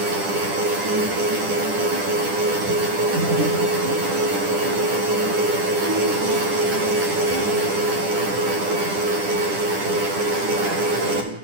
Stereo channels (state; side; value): late; left; 10 ms